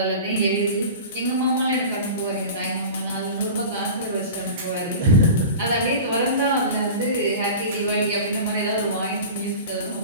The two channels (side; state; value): both; inverted; correlation -0.34